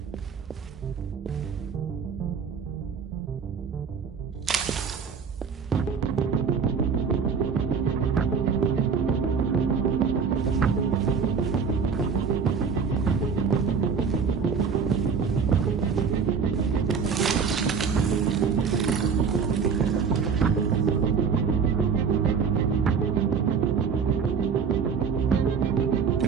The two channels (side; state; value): left; quieter; 6.0 dB